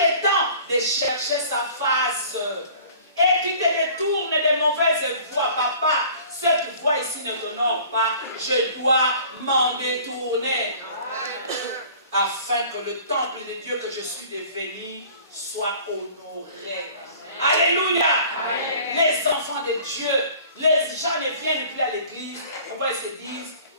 temps de chercher sa face. Et tu te détournes des mauvaises voies. Papa, cette voie ici ne t'honore pas. Je dois m'en détourner. Afin que le temple de Dieu que je suis devenu soit honoré. Alléluia. Amen. Les enfants de Dieu, les gens ne viennent plus à l'église. Pourquoi ils se disent,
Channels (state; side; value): inverted; both; correlation -0.48